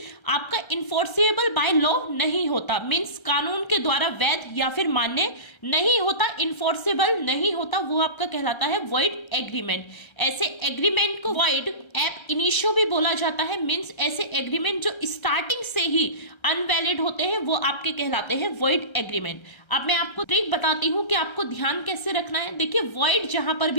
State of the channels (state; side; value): late; right; 1.3 ms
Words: आपका इन्फोर्सेबल बाय लॉ नहीं होता, मीन्स कानून के द्वारा वैध या फिर मान्य नहीं होता, इन्फोर्सेबल नहीं होता, वो आपका कहलाता है वॉइड एग्रीमेंट। ऐसे एग्रीमेंट को वॉइड एब इनिशियो भी बोला जाता है, मीन्स ऐसे एग्रीमेंट जो स्टार्टिंग से ही अनवैलिड होते हैं वो आपके कहलाते हैं वॉइड एग्रीमेंट। अब मैं आपको ट्रिक बताती हूँ कि आपको ध्यान कैसे रखना है। देखिए, वॉइड जहां पर